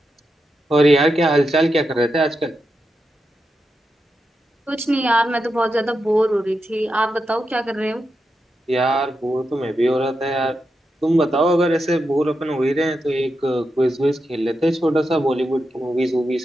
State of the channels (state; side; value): normal; both; correlation 0.87